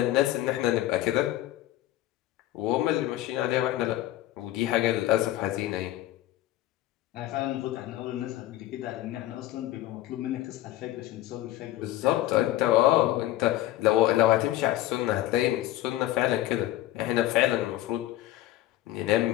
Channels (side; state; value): right; quieter; 14.7 dB